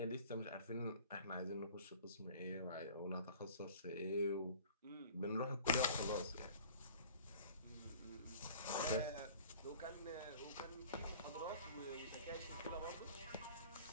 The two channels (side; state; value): both; inverted; correlation -0.46